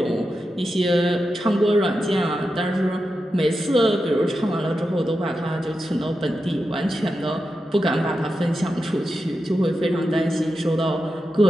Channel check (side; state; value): both; normal; correlation 0.89